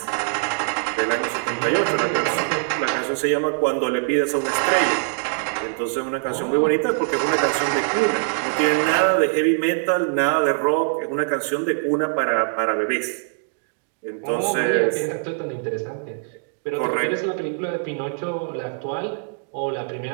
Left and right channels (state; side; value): silent; left; digital silence